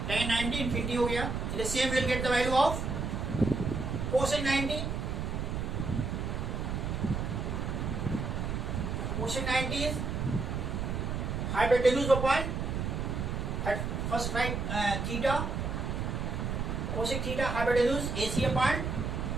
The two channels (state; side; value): noise; right; rumble, 2 dB below the sound